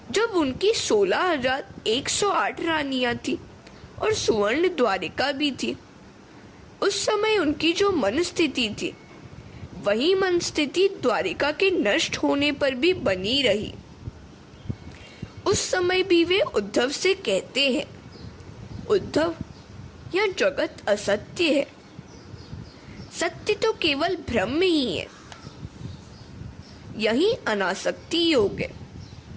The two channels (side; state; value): both; identical; correlation 1.00